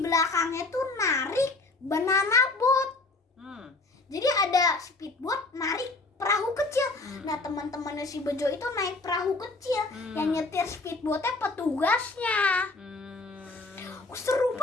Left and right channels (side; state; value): right; quieter; 3.3 dB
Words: tuh narik banana boat. Jadi ada speedboat narik perahu kecil. Nah, teman-temannya si Bejo itu naik perahu kecil. Yang nyetir speedboatnya petugasnya. Seru